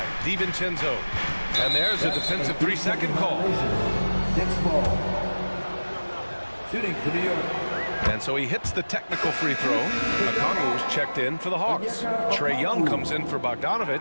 DiVincenzo. And there's a defensive 3-second call. Next ball. Shooting for New York. And so he hits the technical free throw. Okongwu's checked in for the Hawks. Trae Young comes in for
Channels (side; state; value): both; inverted; correlation -1.00